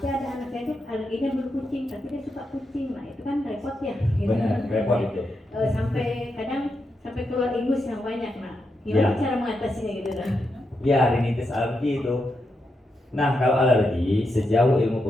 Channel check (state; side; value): normal; both; correlation 0.85